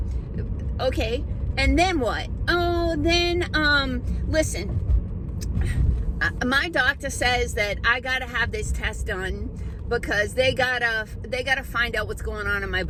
Okay, and then what? Oh, then, listen, my doctor says that I gotta have this test done because they gotta find out what's going on in my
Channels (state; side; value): identical; both; correlation 1.00